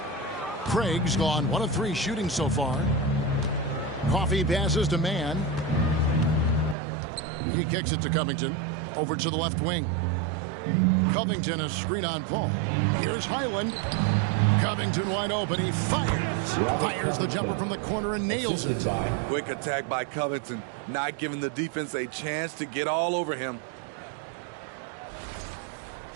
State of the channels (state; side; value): drops out; left; at 6.8 s